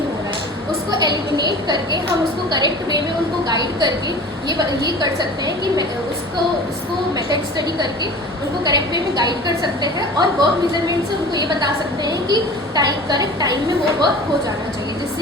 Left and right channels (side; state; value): both; normal; correlation 0.40